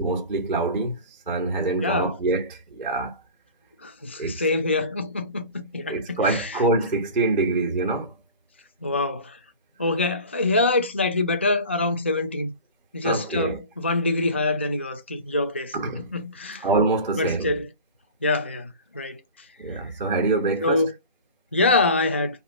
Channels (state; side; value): inverted; both; correlation -0.37